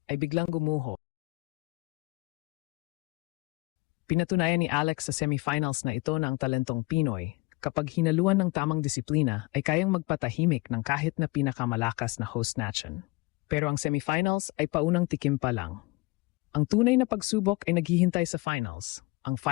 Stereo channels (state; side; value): quieter; right; 24.1 dB